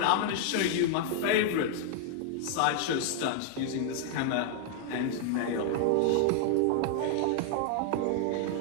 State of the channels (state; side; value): different; both; correlation 0.00